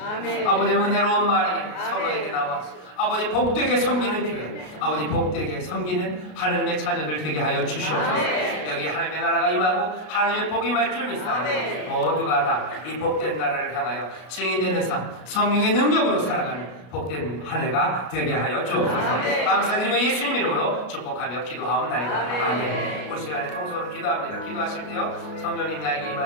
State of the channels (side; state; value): right; late; 33 ms